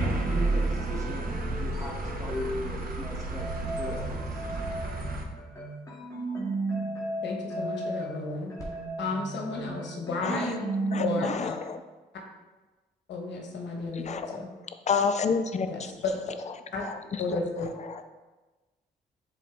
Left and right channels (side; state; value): both; normal; correlation 0.57